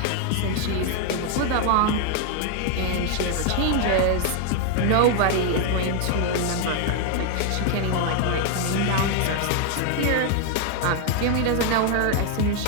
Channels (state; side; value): different; both; correlation 0.00